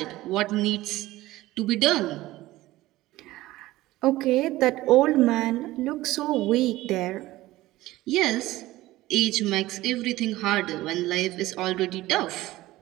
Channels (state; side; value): quieter; left; 17.2 dB